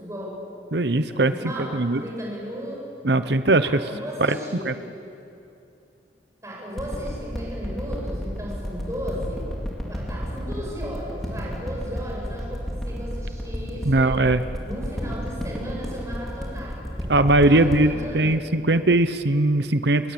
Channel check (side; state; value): both; normal; correlation 0.45